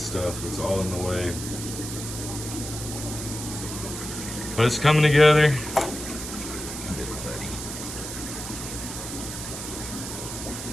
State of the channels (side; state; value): right; noise; hiss, 7 dB below the sound